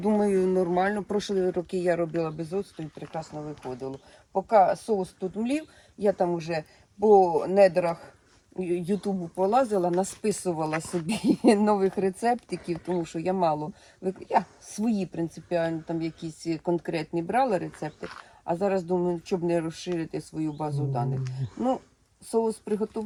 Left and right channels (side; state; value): both; identical; correlation 1.00